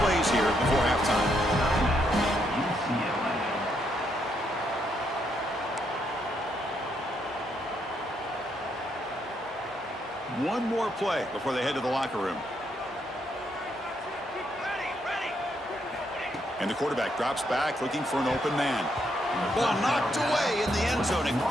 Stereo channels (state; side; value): normal; both; correlation 0.76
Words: plays here before halftime. One more play before they head to the locker room. And the quarterback drops back looking for an open man. Ball knocked away in the end zone. A